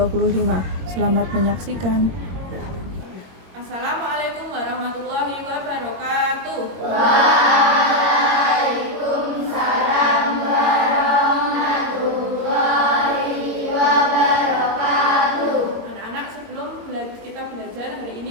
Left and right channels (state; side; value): late; left; 21 ms